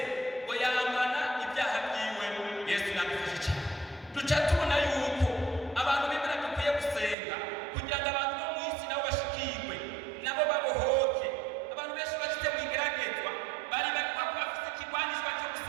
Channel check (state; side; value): drops out; left; at 7.2 s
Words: ngo yamana ibyaha byiwe. Yesu yadufashe cyane. Duca tubona yuko abantu b'Imana dukwiye gusenga kugira ngo abantu bo mu isi nabo bashikirwe, nabo babohoke. Abantu benshi bashyize mu igeragezwa bari bafite ikigwanishwa cyo